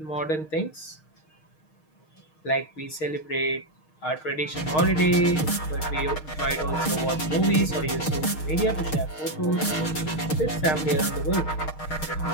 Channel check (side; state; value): right; late; 6.5 ms